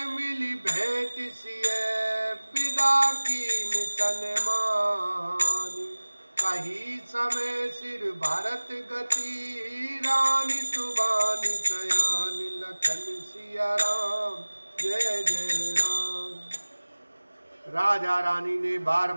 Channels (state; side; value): inverted; both; correlation -1.00